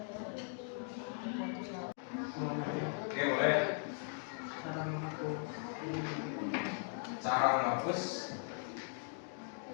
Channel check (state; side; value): silent; right; 52 dB below the other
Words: Oke, boleh. Cara menghapus